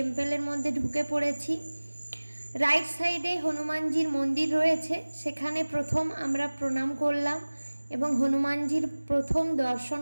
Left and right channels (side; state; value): both; inverted; correlation -1.00